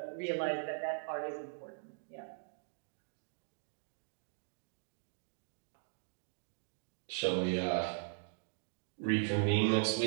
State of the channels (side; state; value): left; silent; digital silence